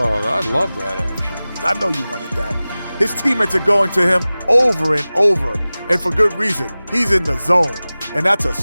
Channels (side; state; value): both; inverted; correlation -0.98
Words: I love that action. I know you wanted that. His teammates are going to him over and over, and for good reason. He's in the zone, and that's a